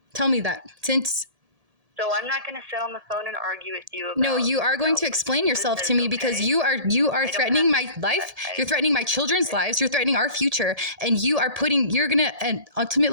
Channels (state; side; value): late; left; 1.7 ms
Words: Tell me that. So I'm not going to sit on the phone and argue with you about... No, you are going to explain yourself to me because you are threatening my life. You're threatening my children's lives. You're threatening our future. And and